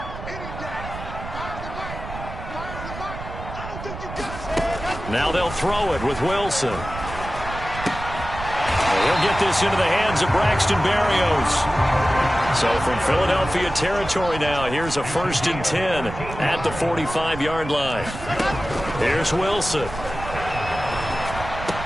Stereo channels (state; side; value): noise; right; rumble, 10 dB below the sound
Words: Now they'll throw it with Wilson. He'll get this into the hands of Braxton Berrios. So from Philadelphia territory now, here's a 1st and 10 at the 45-yard line. Here's Wilson.